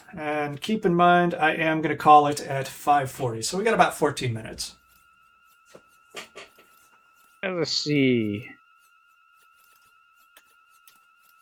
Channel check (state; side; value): identical; both; correlation 1.00